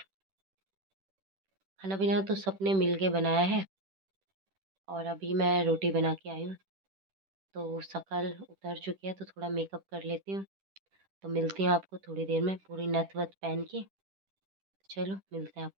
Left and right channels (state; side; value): late; left; 10 ms